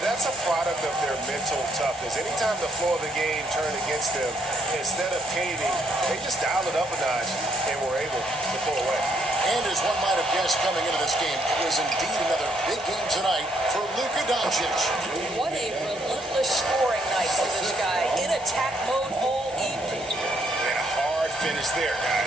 that's a product of their mental toughness. Anytime the floor of the game turned against them, instead of caving, they just dialed it up a notch and were able to pull away. And as one might have guessed coming into this game, it was indeed another big game tonight for Luka Doncic. What a relentless scoring night for this guy. In attack mode all evening. And a hard finish there,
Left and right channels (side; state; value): both; normal; correlation 0.72